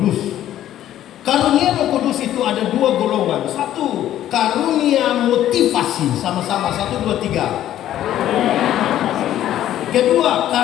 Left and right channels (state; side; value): quieter; right; 12.3 dB